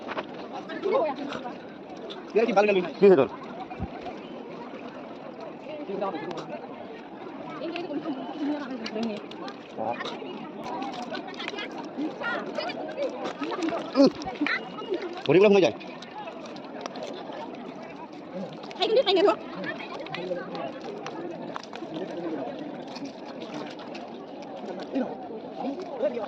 তোর ভরিগুলো হয়ে যায়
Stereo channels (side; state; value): both; identical; correlation 1.00